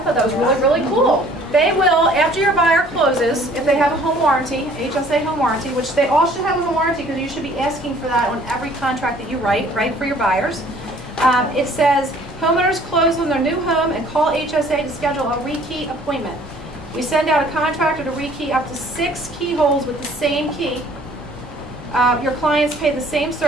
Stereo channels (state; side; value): normal; both; correlation 0.55